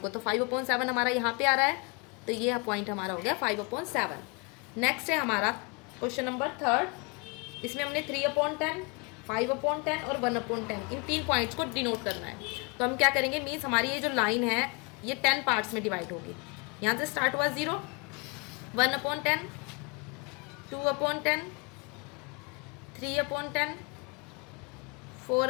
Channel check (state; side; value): quieter; right; 31.1 dB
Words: को, तो 5/7 हमारा यहाँ पे आ रहा है, तो ये पॉइंट हमारा हो गया 5/7। नेक्स्ट है हमारा क्वेश्चन नंबर 3, इसमें हमने 3/10, 5/10 और 1/10 इन 3 पॉइंट्स को डिनोट करना है। तो हम क्या करेंगे, मीन्स हमारी ये जो लाइन है ये 10 पार्ट्स में डिवाइड होगी। यहाँ से स्टार्ट हुआ 0, 1/10, 2/10, 3/10,